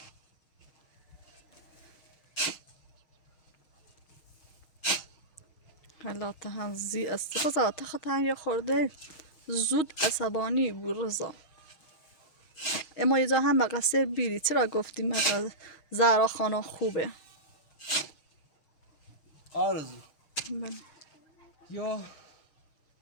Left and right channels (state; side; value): late; right; 6.3 ms